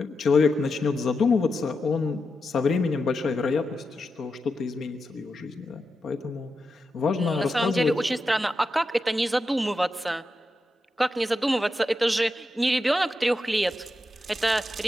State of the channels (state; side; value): normal; both; correlation 0.88